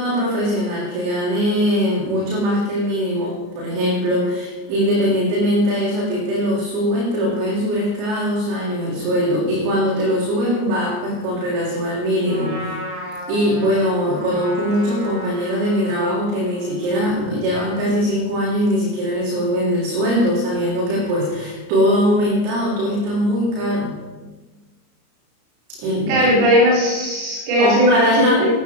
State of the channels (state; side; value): late; left; 34 ms